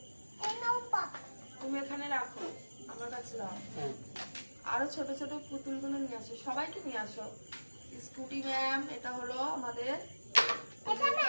তুমি এখানে রাখো, আমার কাছে দাও। আরো ছোট ছোট পুতুলগুলো নিয়ে আসো, সবাইকে নিয়ে আসো। স্কুটি ম্যাম, এটা হলো আমাদের,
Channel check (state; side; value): inverted; both; correlation -1.00